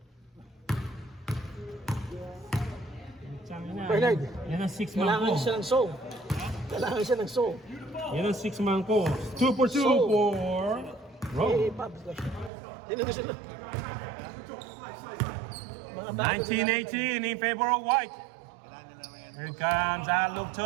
Bernard, Yan ang six man kailangan ko. siya ng soul. Kailangan siya ng soul. Yan ang six man ko. 2 for 2 So- for Eh, Rome. Pabs. Hindi na gusto na. Mga bago, 1918 in favor of White. Here comes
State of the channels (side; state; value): left; drops out; at 12.5 s